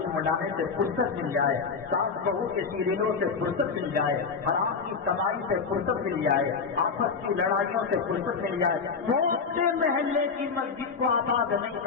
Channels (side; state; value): right; quieter; 5.3 dB